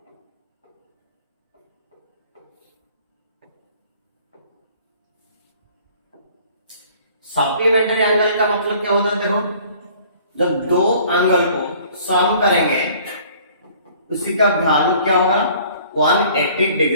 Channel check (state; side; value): inverted; both; correlation -0.54